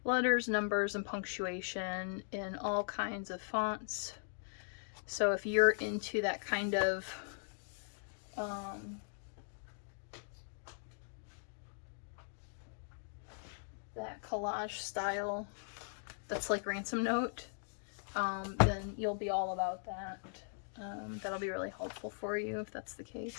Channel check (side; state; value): right; silent; digital silence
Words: letters, numbers, and punctuation in all kinds of fonts. So if you're into that kind of that collage style that's like Ransom Note, then you'll be all about that. That'll be really helpful for you if that's the